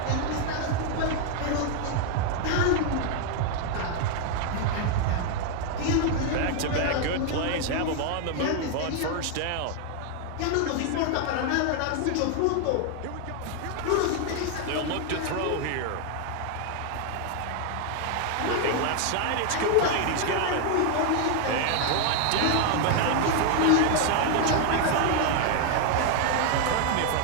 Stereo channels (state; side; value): different; both; correlation 0.00